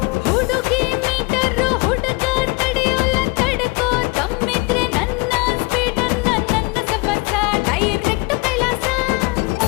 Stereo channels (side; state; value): right; quieter; 26.8 dB